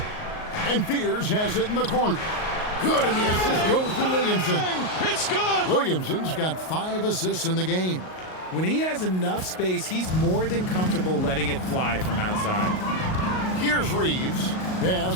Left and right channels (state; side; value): late; right; 38 ms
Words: And Fears has it in the corner. Good, and the assist goes to Williamson. It's good. Williamson's got 5 assists in the game. When he has enough space, he's more than comfortable letting it fly from outside. Here's Reeves. Pass